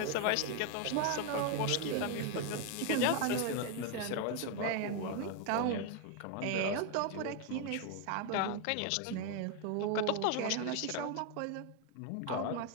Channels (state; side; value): different; both; correlation 0.01